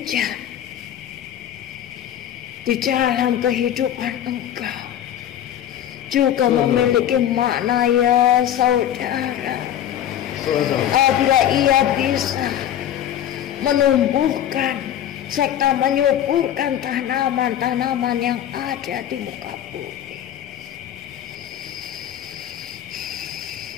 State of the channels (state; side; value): quieter; right; 10.8 dB